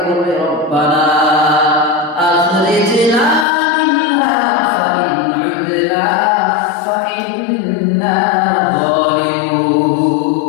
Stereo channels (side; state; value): right; drops out; at 3.5 s